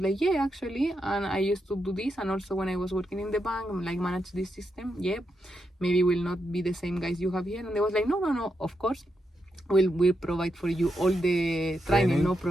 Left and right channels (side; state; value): both; normal; correlation 0.84